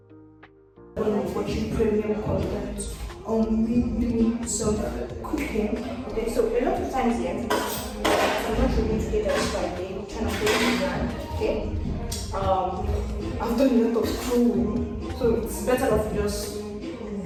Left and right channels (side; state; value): both; identical; correlation 1.00